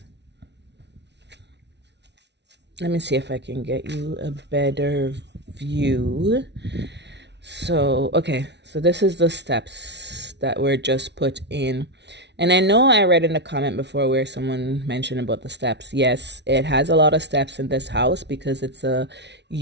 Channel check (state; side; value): late; left; 0.50 ms